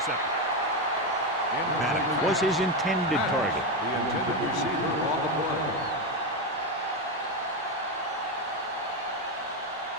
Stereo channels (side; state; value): both; normal; correlation 0.11